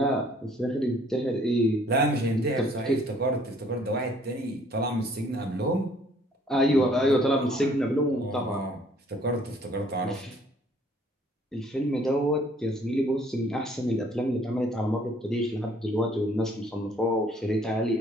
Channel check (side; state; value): both; normal; correlation 0.60